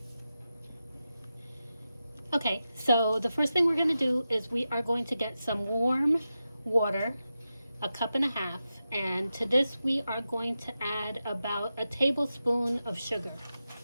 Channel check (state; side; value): inverted; both; correlation -0.91